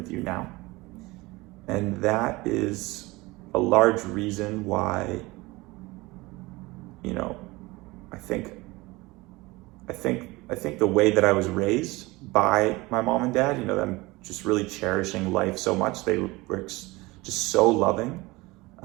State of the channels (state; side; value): quieter; left; 22.0 dB